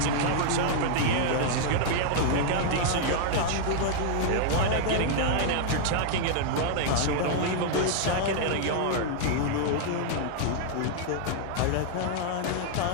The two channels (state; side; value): different; both; correlation -0.01